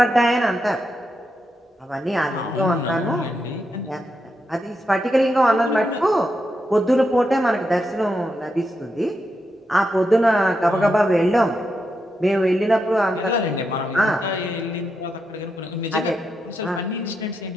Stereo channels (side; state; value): both; normal; correlation 0.85